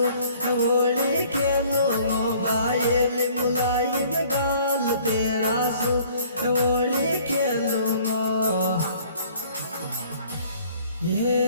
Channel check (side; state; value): both; inverted; correlation -0.56